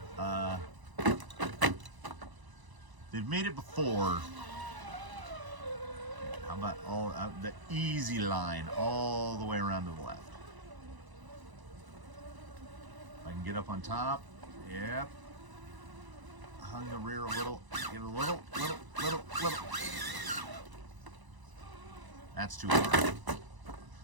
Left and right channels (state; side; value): late; left; 1.0 ms